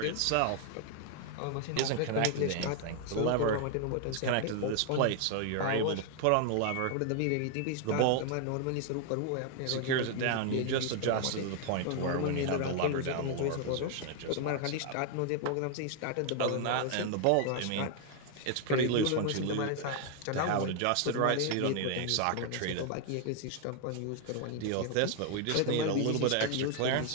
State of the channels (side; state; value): both; different; correlation 0.00